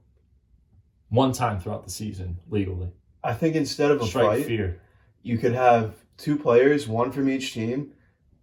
One time throughout the season, legally. I think instead of a fight, fear. You could have two players, one from each team.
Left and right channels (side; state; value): both; identical; correlation 1.00